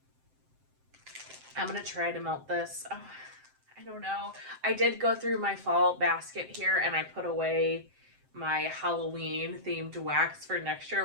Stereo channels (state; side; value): late; left; 7.7 ms